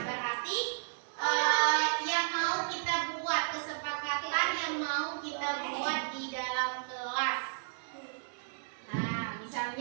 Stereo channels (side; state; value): left; silent; 56 dB below the other